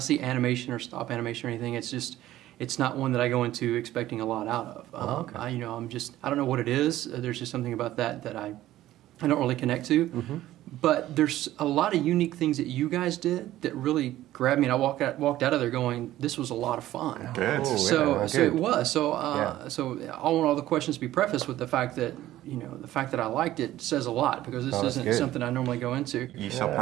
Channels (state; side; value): quieter; left; 14.4 dB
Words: animation or stop animation or anything, it's not one that I go into expecting a lot out of. Okay. I don't know what it is. There's just something about that I don't really connect to. Mm-hmm. But there's a lot of unique things that you guys did that really grabbed me, and I walked out of there going, "This was a lot of fun." Good. So it was. So Yeah. so I want all the questions to be prefaced with the fact that the fact that I liked it says a lot, because this isn't good. something I normally go into. You saw